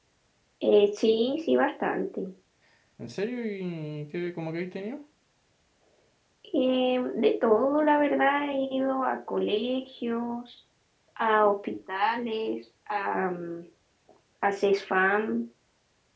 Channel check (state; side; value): identical; both; correlation 1.00